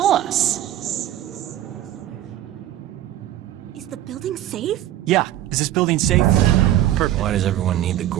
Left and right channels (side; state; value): left; quieter; 13.0 dB